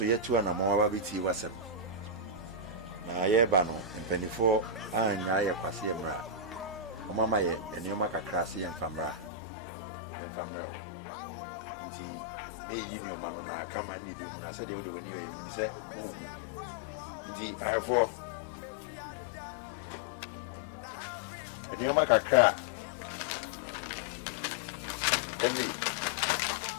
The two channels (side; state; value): right; drops out; at 9.3 s